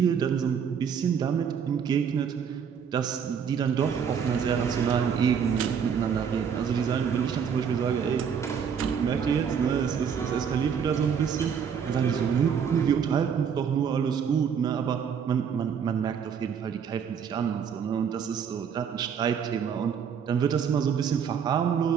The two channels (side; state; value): left; quieter; 7.3 dB